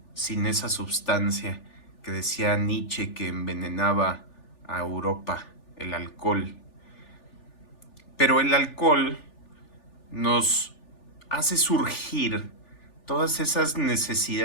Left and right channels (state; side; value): late; right; 3.4 ms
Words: sin esa sustancia que decía Nietzsche que envenenaba a Europa, el alcohol. Pero el alcohol nos hace surgir todas esas